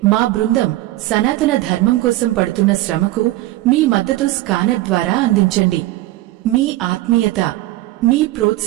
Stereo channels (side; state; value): left; quieter; 16.9 dB